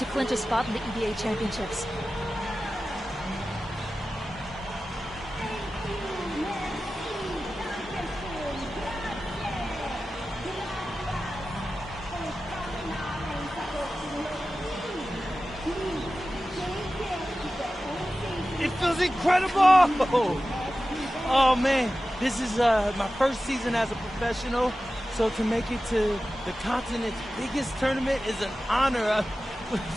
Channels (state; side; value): normal; both; correlation 0.95